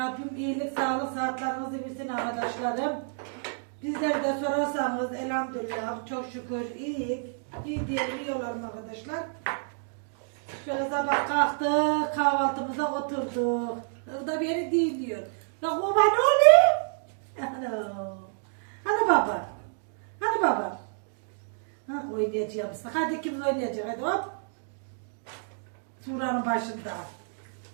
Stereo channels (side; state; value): left; silent; digital silence